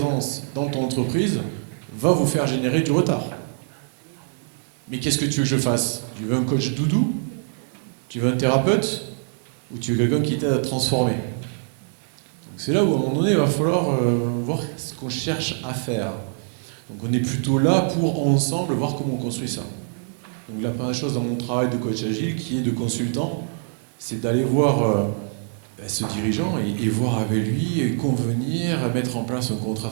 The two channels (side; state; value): left; silent; 63 dB below the other